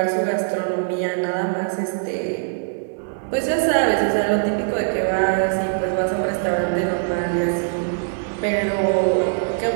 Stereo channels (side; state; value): left; silent; digital silence